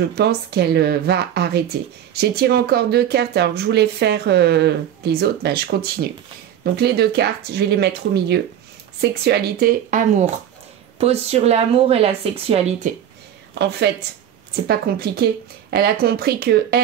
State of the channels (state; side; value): quieter; left; 10.2 dB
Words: pense qu'elle va arrêter. J'ai tiré encore 2 cartes, alors que je voulais faire les autres, ben, je continue. Donc les 2 cartes, je vais les mettre au milieu. Sexualité, amour. Pose sur l'amour et la sexualité. En fait, c'est pas compliqué. Elle a compris que